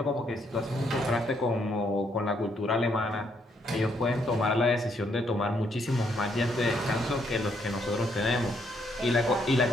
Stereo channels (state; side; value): normal; both; correlation 0.72